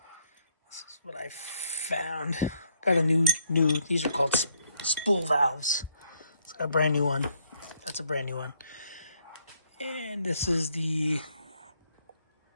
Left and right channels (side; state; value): both; inverted; correlation -0.71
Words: is what I found. Got a new, these are called spool valves. It's a brand new one. That's a brand new one. And this is the